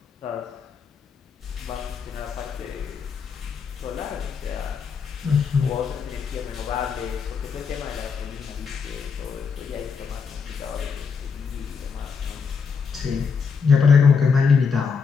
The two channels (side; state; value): right; quieter; 5.8 dB